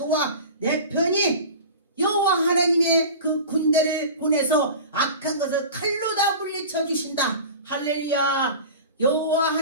내 편이 여호와 하나님의 그 군대를 보내서 악한 것을 칼로 다 물리쳐 주신다. 할렐루야. 여호와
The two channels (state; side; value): inverted; both; correlation -0.35